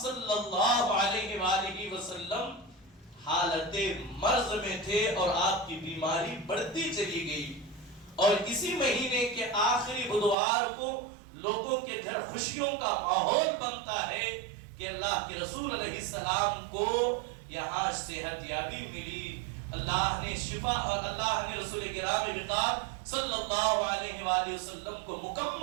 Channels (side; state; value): left; drops out; at 10.4 s